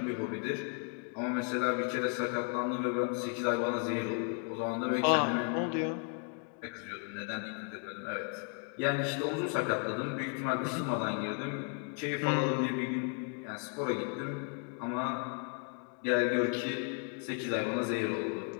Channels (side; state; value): right; quieter; 39.7 dB